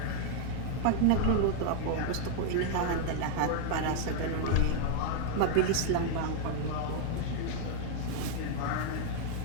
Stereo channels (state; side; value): different; both; correlation 0.00